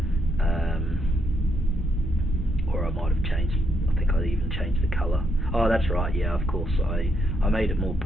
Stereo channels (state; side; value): normal; both; correlation 0.77